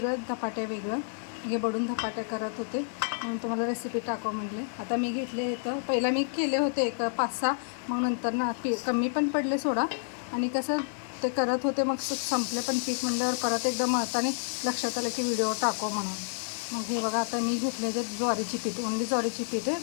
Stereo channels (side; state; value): right; silent; 58 dB below the other